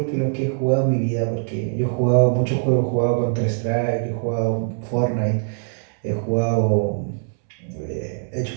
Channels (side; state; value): left; silent; 64 dB below the other